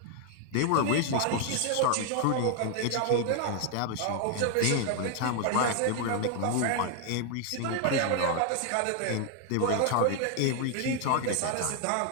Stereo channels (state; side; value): different; both; correlation 0.00